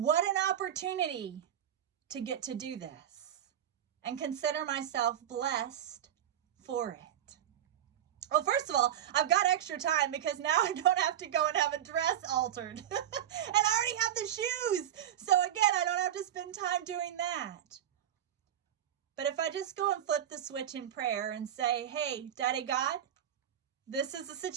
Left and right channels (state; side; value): quieter; left; 10.6 dB